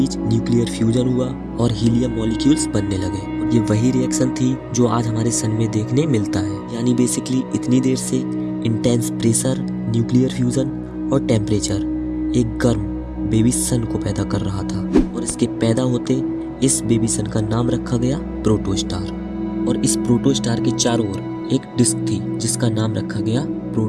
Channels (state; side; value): identical; both; correlation 1.00